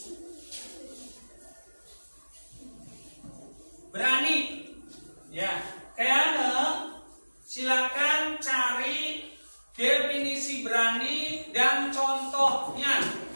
Berani. Ya, kayaknya silakan cari definisi berani dan contohnya.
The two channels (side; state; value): both; inverted; correlation -1.00